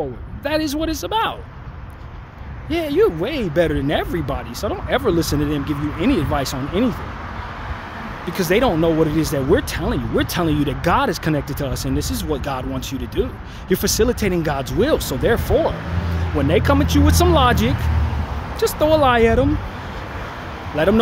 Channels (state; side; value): identical; both; correlation 1.00